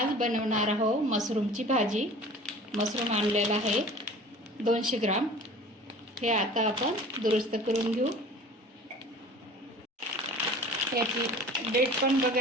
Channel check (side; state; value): both; normal; correlation 0.43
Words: बनवणार आहोत मशरूमची भाजी। मशरूम आणलेला आहे 200 ग्राम। हे आता आपण दुरुस्त करून घेऊ। याची डेट पण